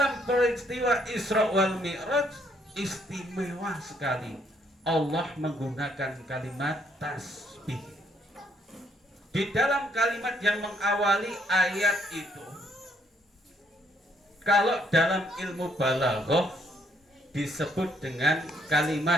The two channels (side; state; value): both; normal; correlation 0.69